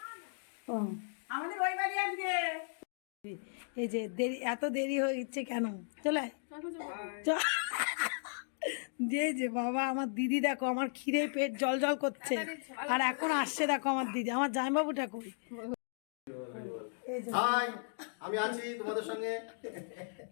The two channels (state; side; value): silent; right; digital silence